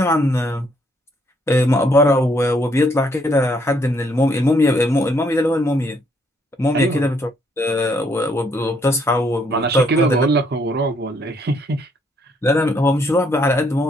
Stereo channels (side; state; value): both; normal; correlation 0.70